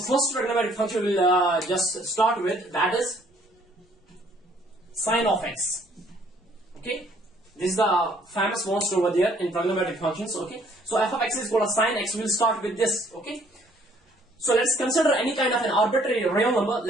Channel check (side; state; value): both; normal; correlation 0.62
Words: trigonometric function we'll just start with, that is sine of x. Okay, this is the famous most over there in trigonometric functions. Okay, so f of x is called a sine x. We'll start with this. Okay, so let's consider any kind of an arbitrary real number.